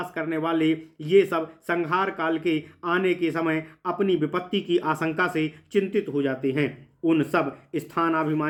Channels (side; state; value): both; identical; correlation 1.00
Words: करने वाले, ये सब संहार काल के आने के समय अपनी विपत्ति की आशंका से चिंतित हो जाते हैं। उन सब